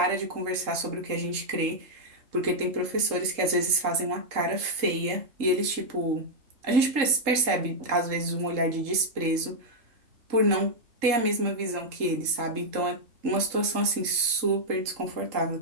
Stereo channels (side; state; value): left; late; 3.7 ms